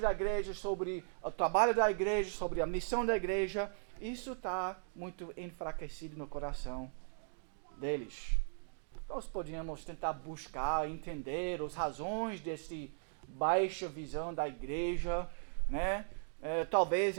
igreja, sobre o trabalho da igreja, sobre a missão da igreja, isso está muito enfraquecido no coração deles. Nós podíamos tentar buscar, entender as razões dessa baixa visão da igreja, né?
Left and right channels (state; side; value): silent; left; digital silence